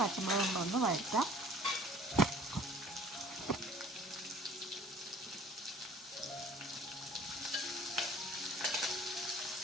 പച്ചമുളകും ഒന്ന് വഴറ്റാം.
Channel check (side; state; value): both; normal; correlation 0.51